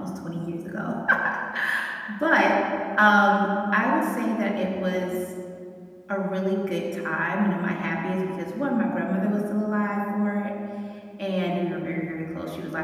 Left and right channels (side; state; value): both; identical; correlation 1.00